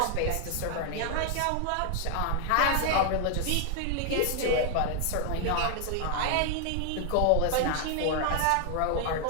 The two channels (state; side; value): different; both; correlation 0.00